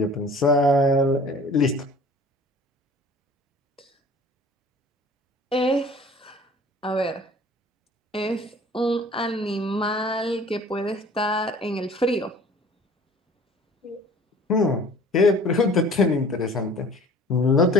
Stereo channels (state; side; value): normal; both; correlation 0.48